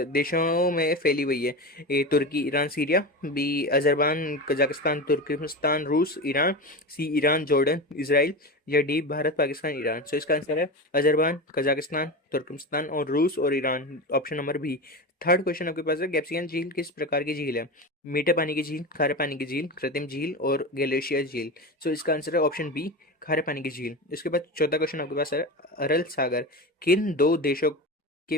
देशों में फैली हुई है? A Turkey, Iran, Syria, B Azerbaijan, Kazakhstan, Turkmenistan, रूस, Iran, C Iran, Jordan, Israel या डी भारत, पाकिस्तान, ईरान। इसका आंसर है अजरबैजान, कजाकिस्तान, तुर्कमेनिस्तान और रूस और Iran, option number B. Third question आपके पास है, कैप्सिकन झील किस प्रकार की झील है? मीठे पानी की झील, खारे पानी की झील, कृत्रिम झील और ग्लेशियर झील। इसका आंसर है ऑप्शन बी, खारे पानी की झील। इसके बाद चौथा क्वेश्चन आपके पास है, अरल सागर किन दो देशों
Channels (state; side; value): normal; both; correlation 0.24